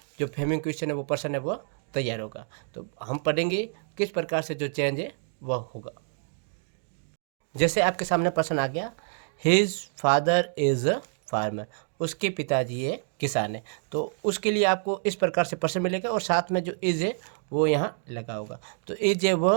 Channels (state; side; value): silent; left; 58 dB below the other